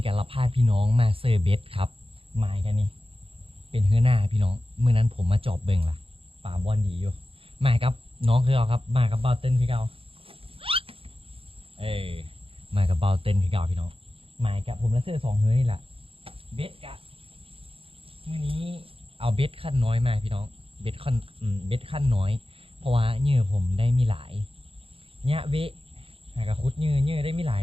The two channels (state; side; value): late; left; 0.27 ms